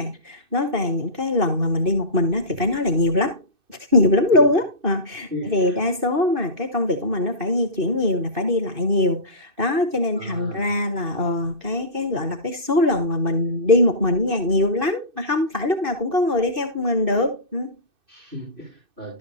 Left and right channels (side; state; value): left; late; 2.6 ms